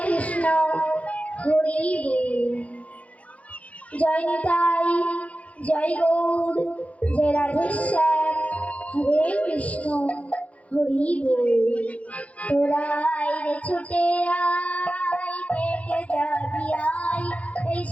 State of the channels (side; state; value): right; late; 0.066 ms